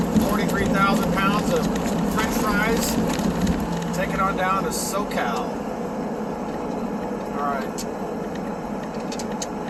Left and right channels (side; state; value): both; identical; correlation 1.00